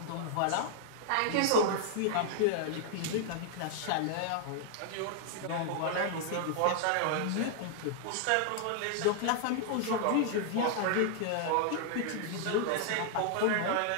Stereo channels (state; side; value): different; both; correlation -0.01